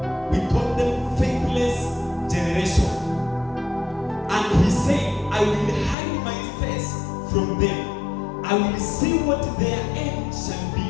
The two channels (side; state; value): right; drops out; at 6.0 s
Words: We call them faithless generation. And he said, I will hide my face from them. I will see what their end shall be.